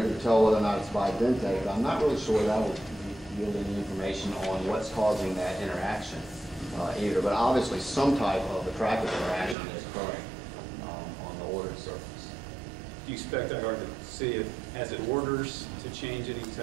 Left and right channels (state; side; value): drops out; left; at 9.6 s